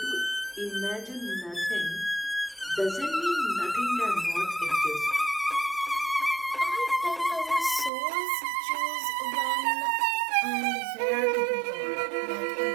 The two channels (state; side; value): drops out; left; at 7.9 s